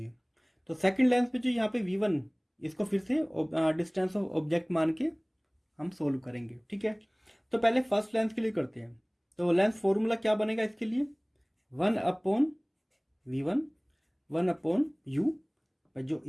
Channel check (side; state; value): both; identical; correlation 1.00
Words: तो सेकंड लेंस पे जो यहाँ पे V1, इसको फिर से डिस्टेंस ऑफ ऑब्जेक्ट मान के हम सोल्व करेंगे, ठीक है। तो पहले फर्स्ट लेंस के लिए करते हैं, तो लेंस फॉर्मूला क्या बनेगा इसके लिए, 1/V1 1/U, जो